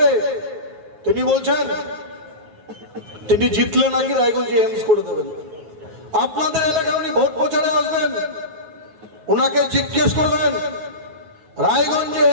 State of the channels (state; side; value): late; left; 9.4 ms